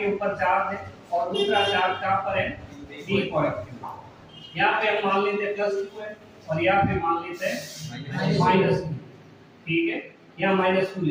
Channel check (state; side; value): identical; both; correlation 1.00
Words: ऊपर चार्ज है और दूसरा चार्ज कहां पर है? B point. यहाँ पे हम मान लेते हैं +2 है और यहाँ पे मान लेते हैं -2। ठीक है, यहाँ -2 ले